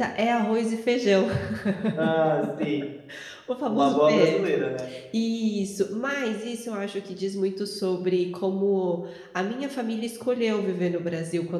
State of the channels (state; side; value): identical; both; correlation 1.00